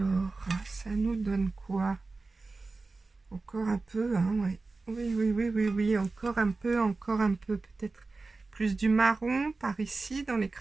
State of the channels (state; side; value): quieter; left; 3.7 dB